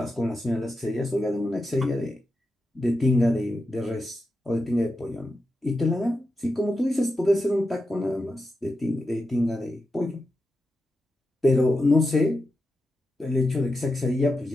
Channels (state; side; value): normal; both; correlation 0.89